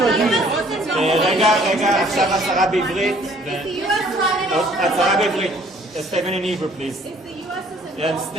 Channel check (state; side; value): normal; both; correlation 0.58